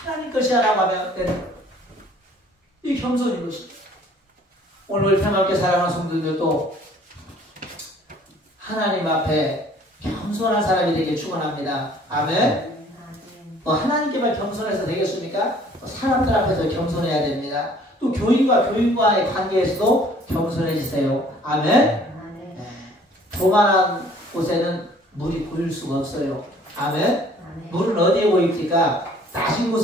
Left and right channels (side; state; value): both; normal; correlation 0.55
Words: 것이야 라고 하면 되는 거예요. 이 겸손인 것입니다. 오늘 평화롭게 살아가는 성도들도 하나님 앞에 겸손한 사람이 되길 축원합니다. 아멘. 하나님께만 겸손해서 되겠습니까? 사람들 앞에서 겸손해야 됩니다. 또 교인과 교인과의 관계에서도 겸손해지세요. 아멘. 네. 조만한 곳에는 물이 보일 수가 없어요. 아멘. 물은 어디에 보입니까? 낮은